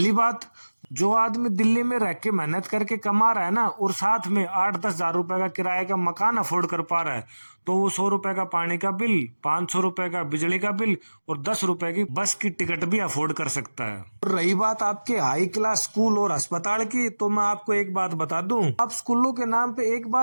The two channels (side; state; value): both; inverted; correlation -1.00